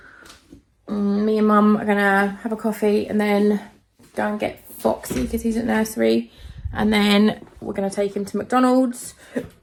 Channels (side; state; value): both; identical; correlation 1.00